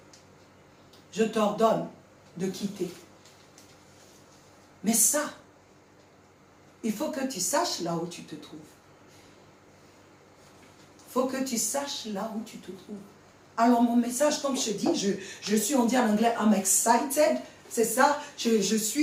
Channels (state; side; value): identical; both; correlation 1.00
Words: de quitter. Mais ça, il faut que tu saches là où tu te trouves. Il faut que tu saches là où tu te trouves. Alors mon message, comme je dis, je suis, on dit en anglais, I'm excited C'est ça, je